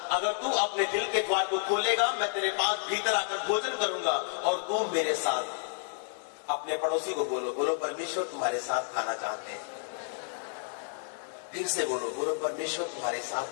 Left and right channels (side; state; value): right; silent; digital silence